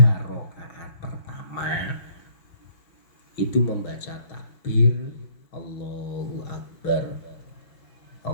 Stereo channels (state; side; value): late; right; 6.3 ms